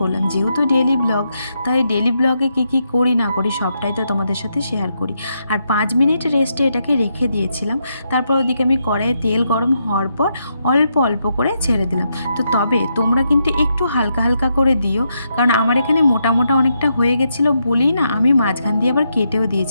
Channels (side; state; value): both; inverted; correlation -0.81